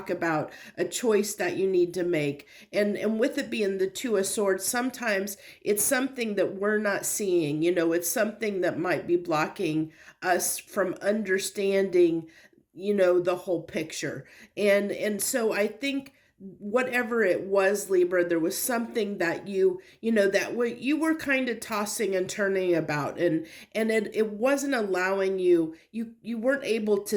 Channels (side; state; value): both; identical; correlation 1.00